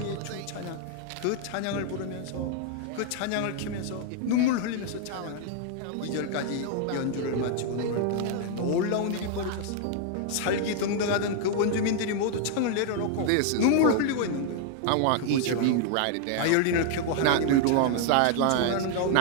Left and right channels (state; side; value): different; both; correlation 0.00